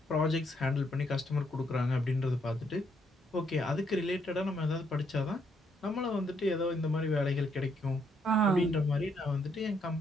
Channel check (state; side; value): normal; both; correlation 0.73